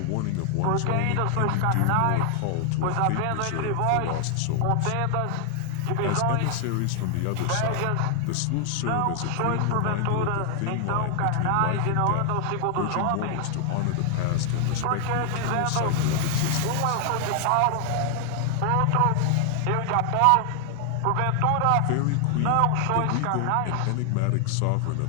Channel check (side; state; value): both; different; correlation 0.00